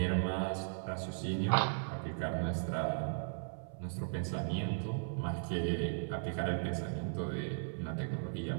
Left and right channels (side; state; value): left; silent; 53 dB below the other